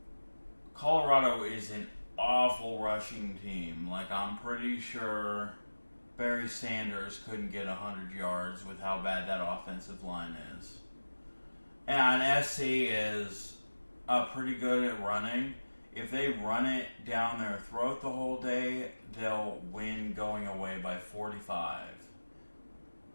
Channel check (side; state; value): both; inverted; correlation -1.00